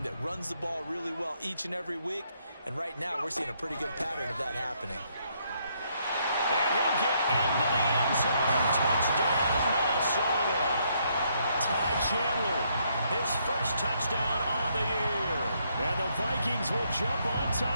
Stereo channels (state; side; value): inverted; both; correlation -0.73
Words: that runs the ball really well each and every week, and right now we're seeing a pretty good pattern of that happening. And he'll get into the end zone. Touchdown, Minnesota. Ty Chandler, his first touchdown on the year. And the Vikings will jump on